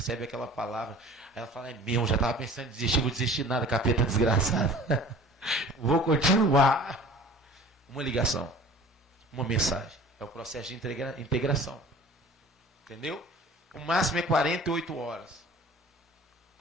aquela palavra. Aí ela fala, é mesmo, já estava pensando em desistir, vou desistir nada, capeta desgraçado. Vou continuar. Uma ligação, uma mensagem. É o processo de integração. Entendeu? O máximo é 48 horas.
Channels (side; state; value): both; normal; correlation 0.45